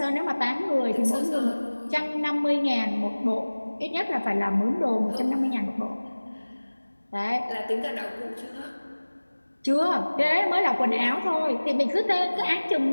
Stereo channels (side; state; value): both; inverted; correlation -1.00